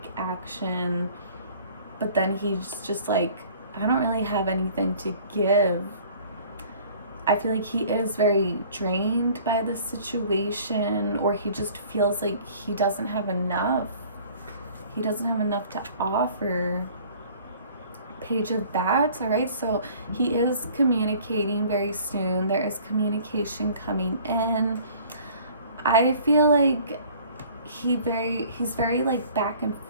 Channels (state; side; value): inverted; both; correlation -0.51